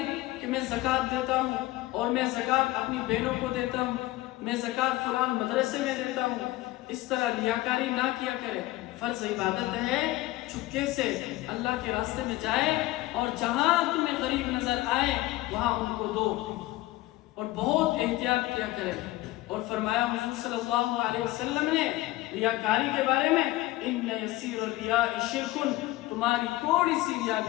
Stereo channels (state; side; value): quieter; right; 17.9 dB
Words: کہ میں زکوٰۃ دیتا ہوں اور میں زکوٰۃ اپنی بہنوں کو دیتا ہوں، میں زکوٰۃ فلان مدرسے میں دیتا ہوں، اس طرح ریاکاری نہ کیا کرے۔ فرض عبادت ہے چپکے سے اللہ کے راستے میں جائے اور جہاں تمہیں غریب نظر آئے وہاں ان کو دو، اور بہت احتیاط کیا کرے۔ اور فرمایا حضور صلی اللہ علیہ وسلم نے ریاکاری کے بارے میں، ان یسیر الریاء شرک، تمہاری تھوڑی سی ریا